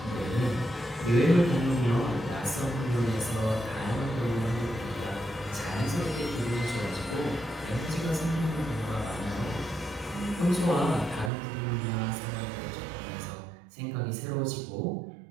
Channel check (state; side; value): drops out; left; at 11.3 s